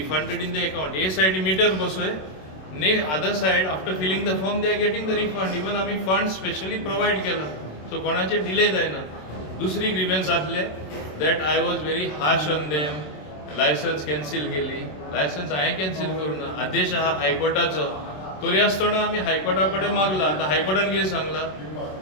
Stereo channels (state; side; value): late; right; 27 ms